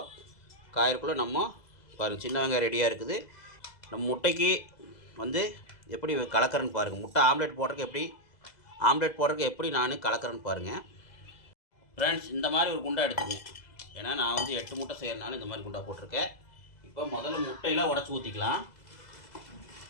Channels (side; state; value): right; late; 2.0 ms